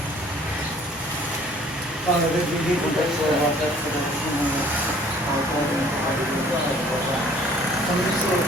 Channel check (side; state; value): both; normal; correlation 0.55